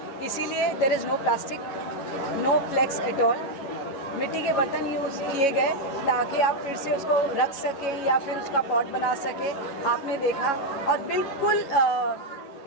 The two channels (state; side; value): late; right; 11 ms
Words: इसीलिए there is no plastic, no flex at all. मिट्टी के बर्तन यूज़ किए गए ताकि आप फिर से उसको रख सकें या फिर उसका पॉट बना सकें, आपने देखा। और बिल्कुल